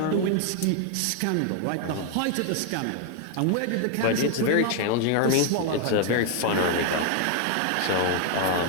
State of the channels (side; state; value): both; different; correlation 0.00